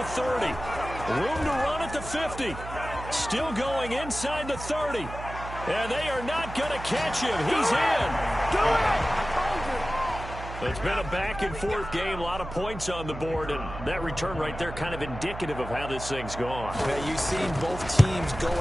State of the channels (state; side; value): noise; right; hum, 10 dB below the sound